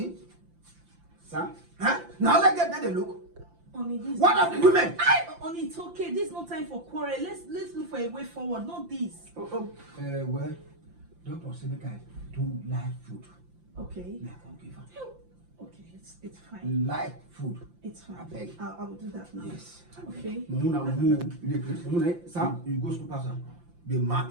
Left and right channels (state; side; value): late; left; 5.8 ms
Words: Sir? Huh? Now let's get that they look. Only this. What of the women? Only it's okay. This is no time for quarrel. Let's look for a way forward. Not this. Well, Doctor said make I do live food. Okay. Now I can give her. Okay, it's fine. Live food. It's fine. I beg. I will do that now. Yes. Okay. Sam, you go school pastor. Be mad.